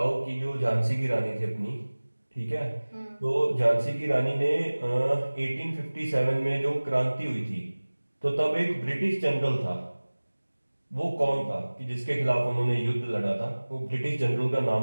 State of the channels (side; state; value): both; inverted; correlation -1.00